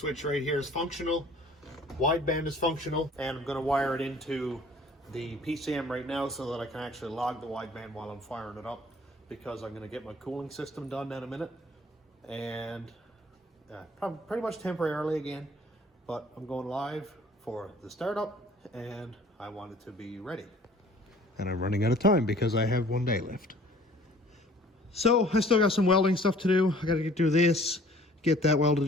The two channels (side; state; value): both; normal; correlation 0.53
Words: right here is functional, wideband is functional, and I'm going to wire it into the PCM right now so that I can actually log the wideband while I'm firing it up, because I'm going to get my cooling system done in a minute, and probably pretty much temporarily again, but I'm going live for the startup, and I want it to be ready. And I'm running out of time because I have 1 day left. So I still got some welding stuff to do. I got to get through this. Get that welded